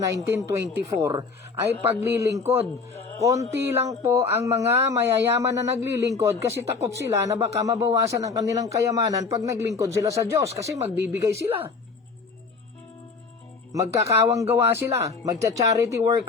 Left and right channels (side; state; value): right; quieter; 4.6 dB